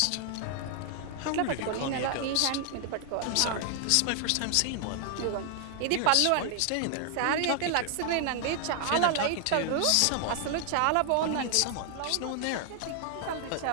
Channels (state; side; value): different; both; correlation 0.00